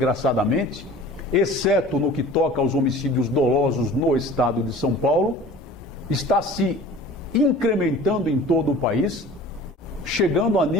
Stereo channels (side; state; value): both; normal; correlation 0.43